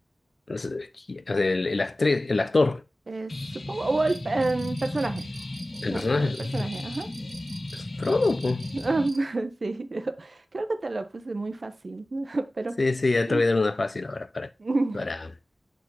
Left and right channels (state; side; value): normal; both; correlation 0.96